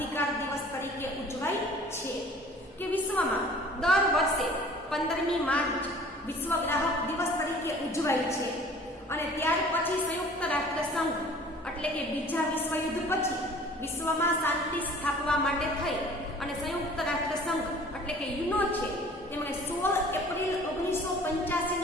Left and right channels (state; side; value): normal; both; correlation 0.49